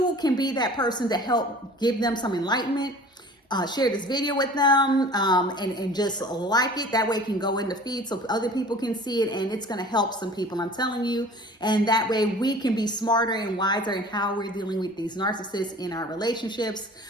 can be that person to help give them some enlightenment. Share this video with them, and just like it. That way it can go in the feed so other people can see it, and it's going to help some people, I'm telling you. And that way we can be smarter and wiser in how we're dealing with these narcissists in our relationships,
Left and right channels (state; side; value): normal; both; correlation 0.45